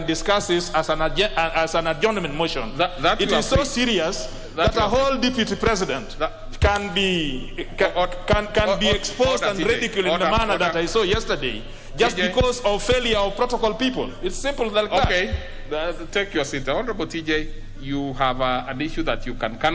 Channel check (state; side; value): identical; both; correlation 1.00